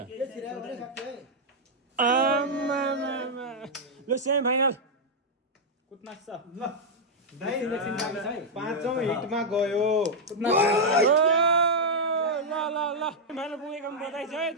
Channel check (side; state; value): both; normal; correlation -0.04